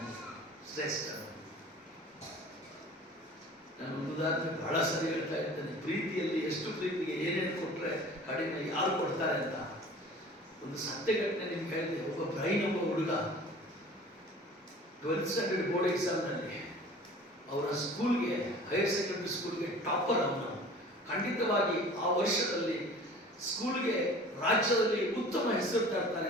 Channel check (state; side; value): normal; both; correlation 0.44